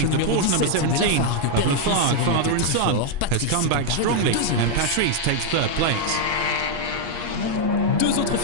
The Porsche number 17 of Laflague, father and son, has come back strongly, and Patrice takes third place. Deux autres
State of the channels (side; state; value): left; late; 8.4 ms